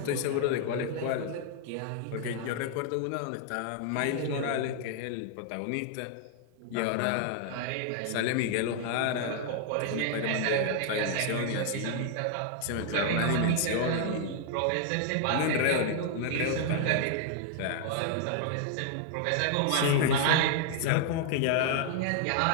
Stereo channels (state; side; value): different; both; correlation -0.01